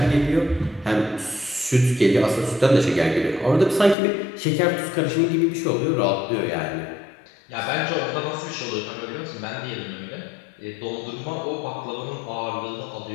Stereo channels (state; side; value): drops out; right; at 4.0 s